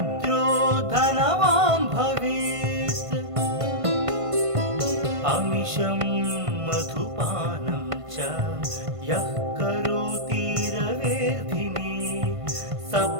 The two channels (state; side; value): late; left; 1.5 ms